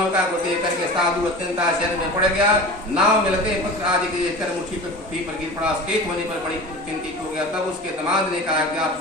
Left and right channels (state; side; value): normal; both; correlation 0.34